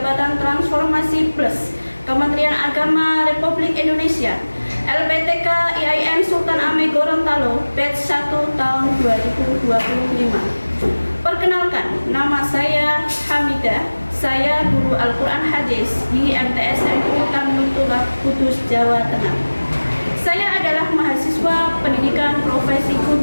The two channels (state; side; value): inverted; both; correlation -1.00